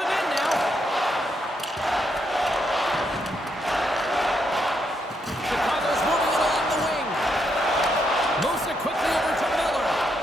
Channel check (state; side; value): normal; both; correlation 0.78